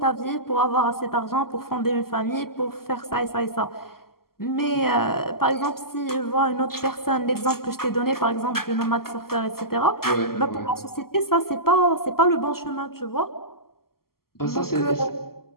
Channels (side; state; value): right; late; 0.93 ms